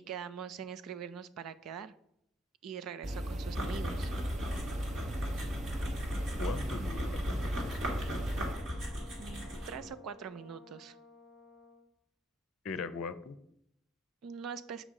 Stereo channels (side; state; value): both; normal; correlation 0.75